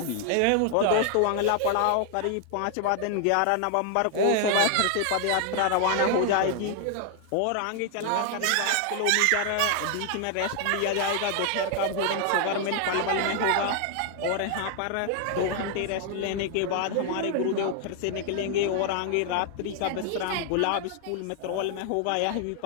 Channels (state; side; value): different; both; correlation 0.00